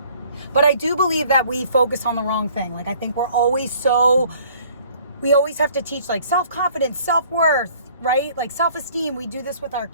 But I do believe that we focus on the wrong thing. Like, I think we always have to teach like self-confidence, self-worth, right? Like self-esteem. We do this with our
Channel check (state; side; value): inverted; both; correlation -0.56